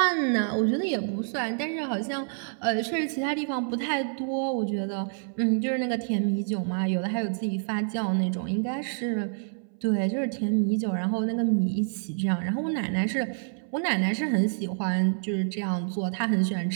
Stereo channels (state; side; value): silent; left; 60 dB below the other